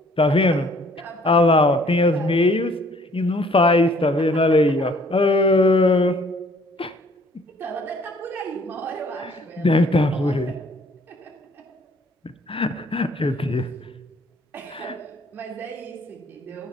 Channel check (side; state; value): both; normal; correlation 0.59